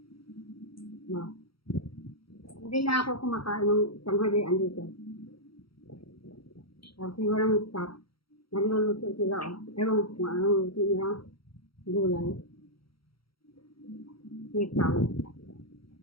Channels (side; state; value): right; late; 0.75 ms